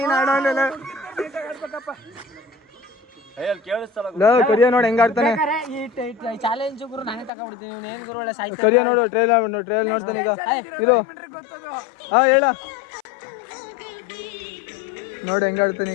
ಆಡೋಲ್ಲ ಕರಿಯ ನೋಡಿ ಹೆಂಗ ಆಡ್ತಾನೆ ಚಾಲೆಂಜ್ ಗುರು ನಾನೇ ತಗೊಂಡ್ಬಿಡ್ತೀನಿ ಇವ್ನು ಏನ್ ಗುರು ಒಳ್ಳೆ ಸಾಯ್ತಾನೆ ಕರಿಯ ನೋಡು ಟ್ರೈಲ್ ನೋಡ್ತಾನೆ ಈಗ ಇದು ಹಾ ಹೇಳ ನೋಡಿ ಹೆಂಗ ಆಡ್ತಾನೆ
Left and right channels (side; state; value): right; drops out; at 7.3 s